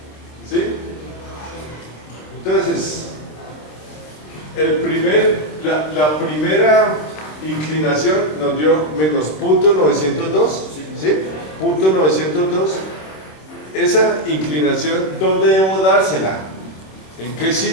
¿Sí? Entonces, la primera inclinación nos dio menos punto 902, ¿sí? Punto 902. Esa inclinación, ¿dónde debo dársela? ¿En qué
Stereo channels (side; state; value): right; late; 26 ms